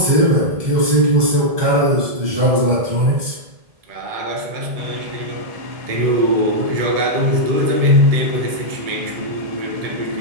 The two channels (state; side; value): late; left; 1.7 ms